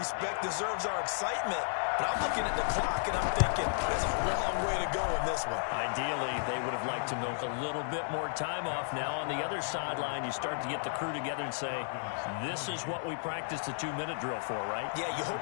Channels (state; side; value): silent; right; 56 dB below the other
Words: deserves our excitement. But I'm looking at the clock, and I'm thinking there's a long way to go in this one. Ideally, they would have liked to milk a little bit more time off. Now, on the other sideline, you start to get the crew together and say, this is what we practiced the 2-minute drill for, right? Yeah, you hope